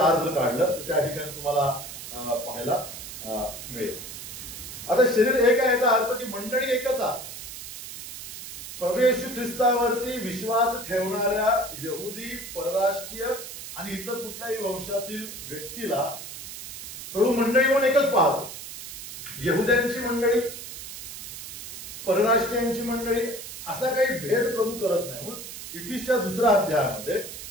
जर काढलं तर त्या ठिकाणी तुम्हाला पाहायला मिळेल. आता शरीर एक आहे याचा अर्थ की मंडळी एकच आहे. प्रभू येशू ख्रिस्तावरती विश्वास ठेवणाऱ्या यहुदी, परराष्ट्रीय आणि इतर कुठल्याही वंशातील व्यक्तीला प्रभू मंडळी म्हणून एकच पाहतो. यहुद्यांची मंडळी, परराष्ट्रीयांची मंडळी असा काही भेद प्रभू करत नाही. म्हणून इफिसच्या 2ऱ्या अध्यायामध्ये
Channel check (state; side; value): noise; right; hiss, 11 dB below the sound